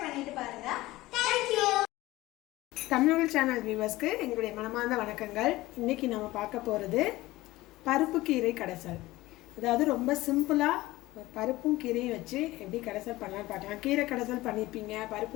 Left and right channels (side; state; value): right; quieter; 18.3 dB